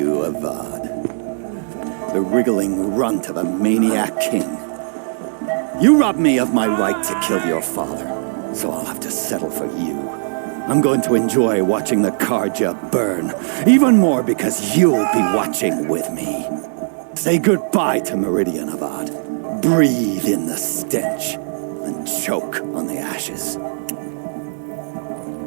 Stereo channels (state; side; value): silent; left; digital silence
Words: Avad. The wriggling runt of a maniac king. You robbed me of my right to kill your father, so I'll have to settle for you. I'm going to enjoy watching the Karja burn, even more because you'll be watching with me. Say goodbye to Meridian, Avad. Breathe in the stench, and choke on the ashes.